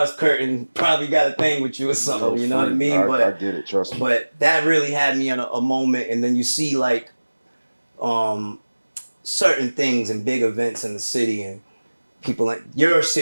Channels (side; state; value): both; inverted; correlation -1.00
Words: curtain probably got a thing with you or something, you know what I mean? I get it, trust me. But that really had me in a moment, and then you see like certain things and big events in the city, and people like your